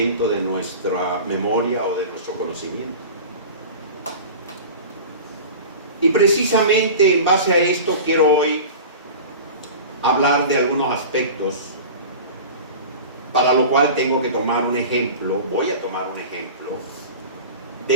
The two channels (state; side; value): inverted; both; correlation -0.34